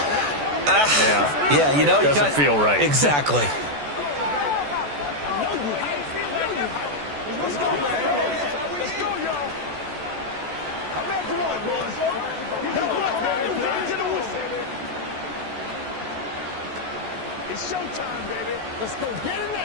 yeah, you know, doesn't feel right. Exactly. It's showtime, baby. Let's go get it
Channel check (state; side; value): late; left; 14 ms